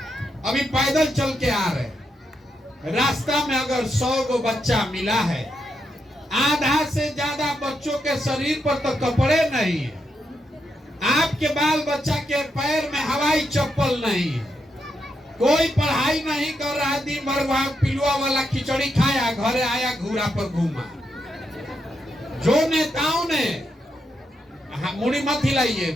अभी पैदल चल के आ रहे, रास्ता में अगर 100 को बच्चा मिला है, आधा से ज्यादा बच्चों के शरीर पर तो कपड़े नहीं है। आपके बाल बच्चा के पैर में हवाई चप्पल नहीं है। कोई पढ़ाई नहीं कर रहा, दिन भर वहां पिलुआ वाला खिचड़ी खाया, घरे आया घूरा पर घूमा। जो नेताओं ने, मुड़ी मत हिलाइए,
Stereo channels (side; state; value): both; normal; correlation 0.82